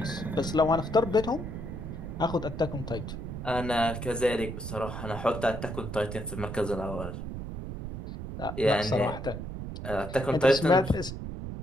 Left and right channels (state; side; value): noise; right; rumble, 7 dB below the sound